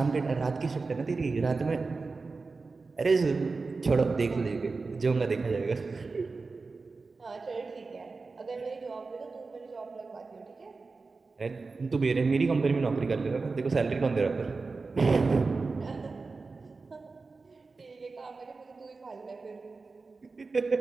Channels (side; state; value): left; quieter; 4.1 dB